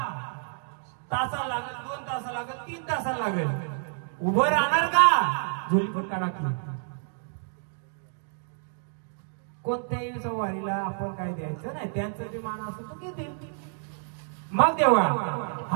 तासा लागेल 2 तास लागेल 3 तास लागेल उभं राहणार का? झोली पण काढा की. कोणत्याही सवारीला आपण काय द्यायचं नाही त्यांचं जे मान असतो तो घेतील. मग देवा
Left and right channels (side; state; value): left; silent; digital silence